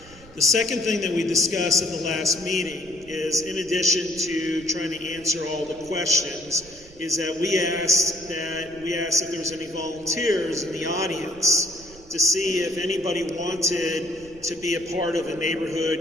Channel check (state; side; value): noise; right; rumble, 22 dB below the sound